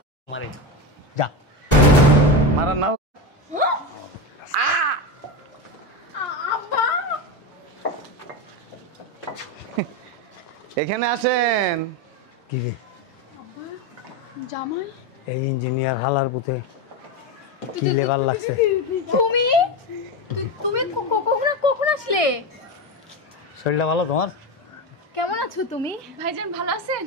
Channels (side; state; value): both; normal; correlation 0.16